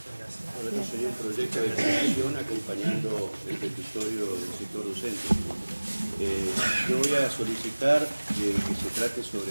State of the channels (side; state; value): both; inverted; correlation -1.00